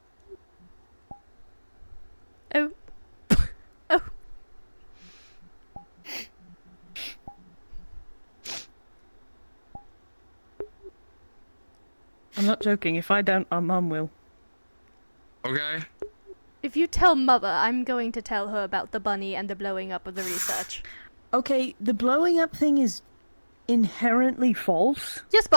Oh. Oh. I'm not joking. If I don't, our mum will. Okay. If you tell Mother, I'm going to tell her about the bunny and the blowing up of the research. Okay, the blowing up thing is inherently false. Yes,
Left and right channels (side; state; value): both; inverted; correlation -1.00